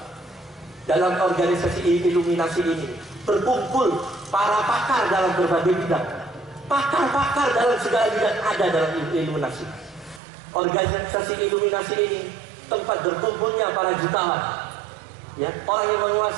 Dalam organisasi Illuminasi ini berkumpul para pakar dalam berbagai bidang. Pakar-pakar dalam segala bidang ada dalam Illuminasi. Organisasi Illuminasi ini tempat berkumpulnya para jutawan, ya, orang yang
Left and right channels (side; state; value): left; drops out; at 10.2 s